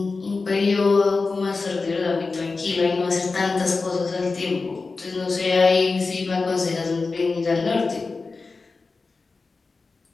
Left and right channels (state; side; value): quieter; right; 4.1 dB